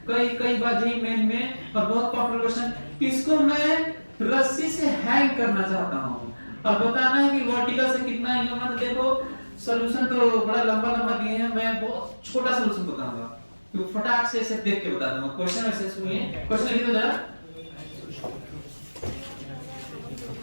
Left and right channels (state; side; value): inverted; both; correlation -1.00